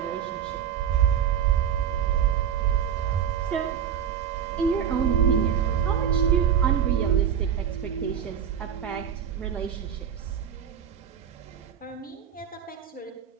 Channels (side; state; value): left; quieter; 8.7 dB